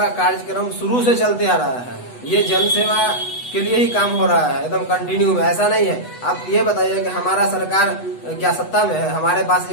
कार्यक्रम शुरू से चलते आ रहा है। ये जन सेवा के लिए ही काम हो रहा है, एकदम कंटिन्यू में। ऐसा नहीं है। आप ये बताइए कि हमारा सरकार क्या सत्ता में है? हमारे पास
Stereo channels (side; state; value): right; late; 8.1 ms